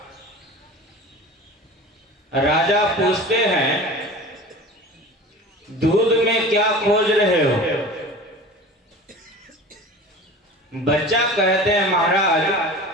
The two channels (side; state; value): both; normal; correlation 0.37